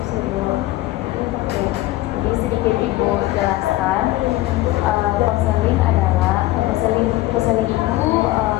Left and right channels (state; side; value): quieter; right; 17.3 dB